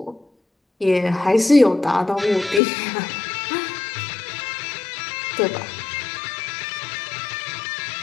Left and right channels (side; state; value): right; drops out; at 2.6 s